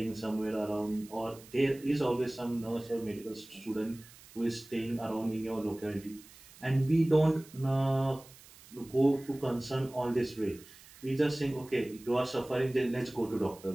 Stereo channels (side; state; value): right; noise; hiss, 22 dB below the sound